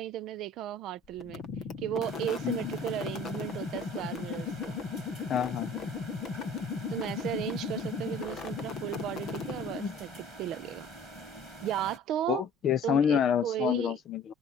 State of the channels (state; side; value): normal; both; correlation 0.48